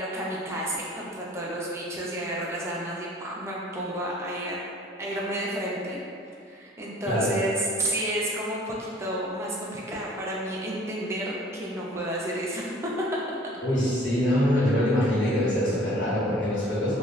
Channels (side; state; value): both; normal; correlation 0.51